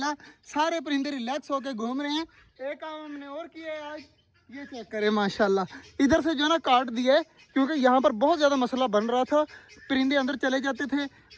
सारे परिंदे रिलैक्स होकर घूम रहे हैं। एक काम हमने और किया है आज, ये चेक करें माशाल्लाह। इधर से जो है ना काट दिया है, क्योंकि यहाँ पर बहुत ज़्यादा मसला बन रहा था। परिंदे अंदर चले जाते थे,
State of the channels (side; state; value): both; identical; correlation 1.00